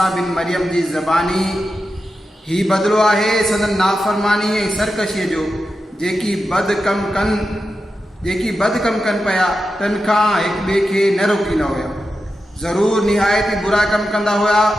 बिन मरियम जी ज़बानी। ही बदिलो आहे संदन नाफ़रमानी ऐं सरकशीअ जो जेकी बद कम कन पिया तन खां हिक ॿिए खे न रोकींदा हुआ। ज़रूर निहायत बुरा कम कंदा हुआ।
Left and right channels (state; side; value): normal; both; correlation 0.90